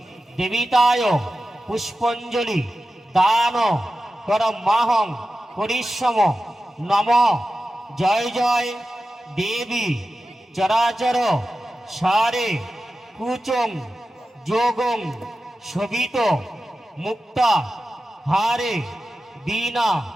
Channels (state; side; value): normal; both; correlation 0.93